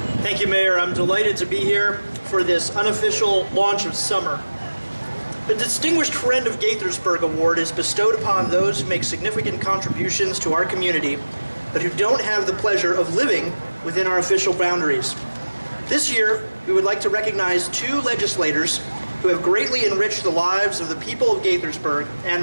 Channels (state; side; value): inverted; both; correlation -1.00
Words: Thank you, Mayor. I'm delighted to be here for this unofficial launch of summer. The Distinguished Friend of Gaithersburg Award is bestowed upon those who make significant contributions to our community, but who don't have the pleasure of living within our official boundaries. This year, we would like to recognize 2 legislators who have greatly enriched the lives of the people of Gaithersburg and